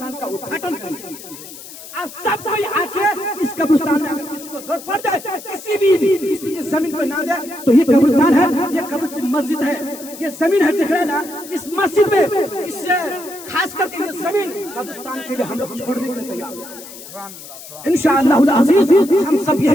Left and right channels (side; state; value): left; noise; hiss, 15 dB below the sound